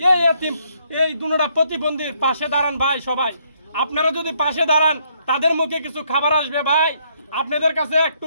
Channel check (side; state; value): both; inverted; correlation -0.71